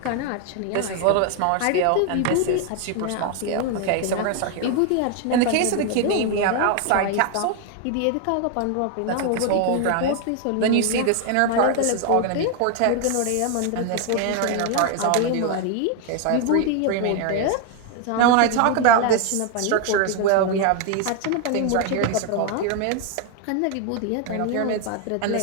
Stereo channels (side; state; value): both; different; correlation 0.01